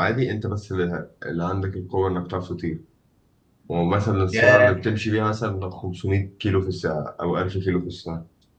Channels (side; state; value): both; identical; correlation 1.00